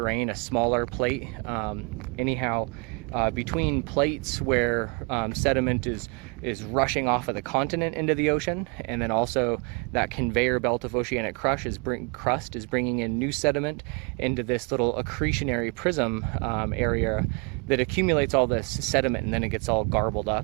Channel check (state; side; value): quieter; left; 32.8 dB